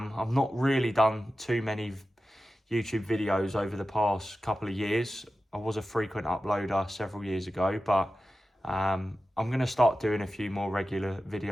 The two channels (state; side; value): normal; both; correlation 0.93